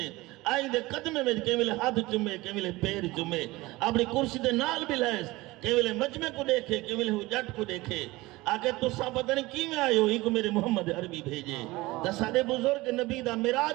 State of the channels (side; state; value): left; quieter; 20.5 dB